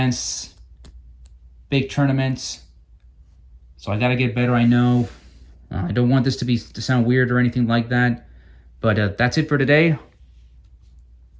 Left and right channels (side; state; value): both; identical; correlation 1.00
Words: big tournaments. So I gotta get better, I know. I don't want this to sound weird or anything like that. But that's it for today.